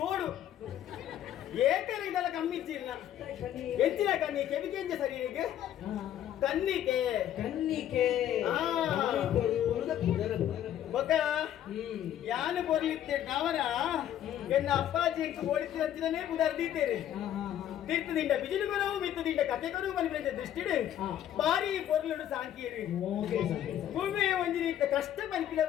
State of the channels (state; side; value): quieter; right; 11.1 dB